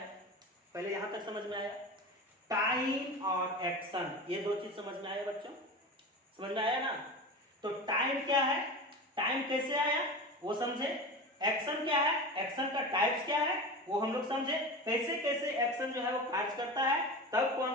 पहले यहाँ तक समझ में आया? टाइम और एक्शन, ये दो चीज समझ में आया बच्चों? समझ में आया ना? तो टाइम क्या है, टाइम कैसे आया वो समझे, एक्शन क्या है, एक्शन का टाइप्स क्या है वो हम लोग समझे, कैसे कैसे एक्शन जो है वो कार्य करता है, तब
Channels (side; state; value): both; normal; correlation 0.28